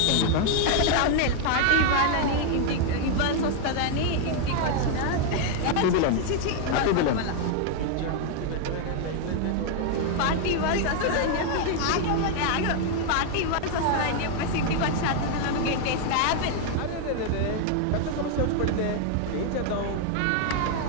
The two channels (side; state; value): both; different; correlation 0.00